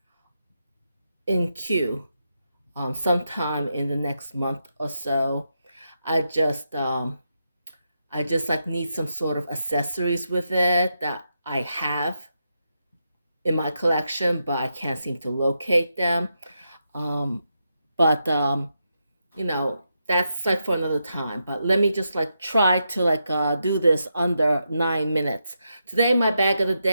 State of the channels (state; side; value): inverted; both; correlation -0.84